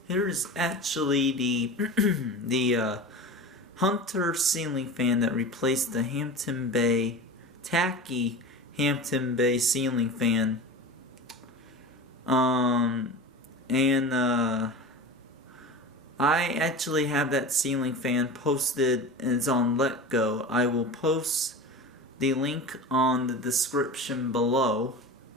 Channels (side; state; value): both; normal; correlation 0.31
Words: here is actually the Hunter ceiling fan that replaced the Hampton Bay tacky Hampton Bay ceiling fan. I actually have that ceiling fan posted and it's on Letgo. I will post the link on the description below.